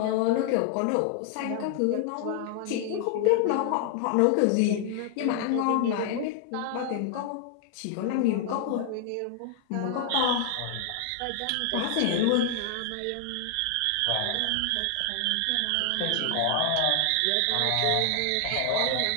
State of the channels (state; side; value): different; both; correlation 0.00